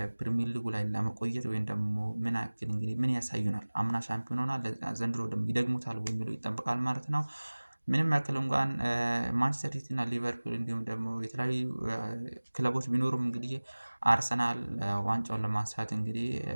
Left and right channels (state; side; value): inverted; both; correlation -1.00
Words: ፕሪሚየር ሊጉ ላይ ለመቆየት ወይም ደግሞ ምን ያክል እንግዲህ ምን ያሳዩናል አምና ሻምፒዮን ሆኗል ዘንድሮ ደግሞ ይደግሙታል የሚለው ይጠበቃል ማለት ነው። ምንም ያክል እንኳን ማንቸስተር ሲቲ እና ሊቨርፑል እንዲሁም ደግሞ የተለያዩ ክለቦች ቢኖሩም እንግዲህ አርሰናል ዋንጫውን ለማንሳት እንግዲህ